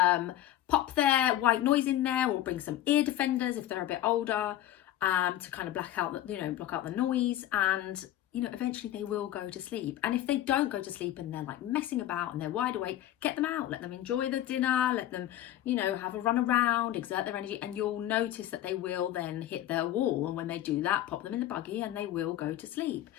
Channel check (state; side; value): quieter; right; 13.2 dB